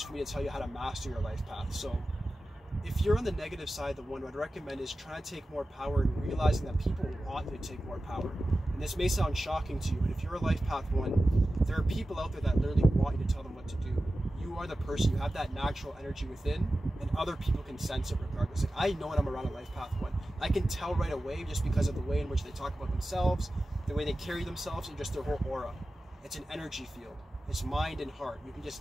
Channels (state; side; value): normal; both; correlation 0.94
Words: for me to tell you how to master your life path. So if you're on the negative side, the 1 what I'd recommend is trying to take more power and realizing that people want you to take more power. And this may sound shocking to you, but if you're a Life Path 1, there are people out there that literally want you to tell them what to do. You are the person, you have that natural energy within, and other people can sense it regardless. Like, I know when I'm around a Life Path 1. I can tell right away just because of the way in which they talk about themselves, the way they carry themselves, and just their whole aura. It's an energy field. It's mind and heart. You can